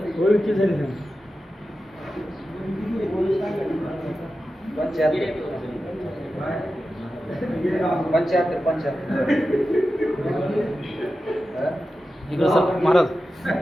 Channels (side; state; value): both; normal; correlation 0.92